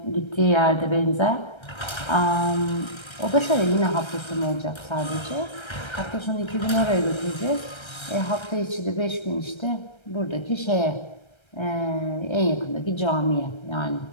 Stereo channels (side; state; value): right; late; 1.3 ms